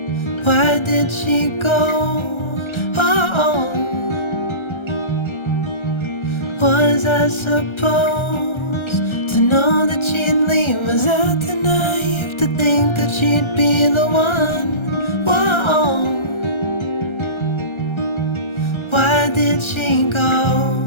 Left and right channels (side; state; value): right; late; 1.3 ms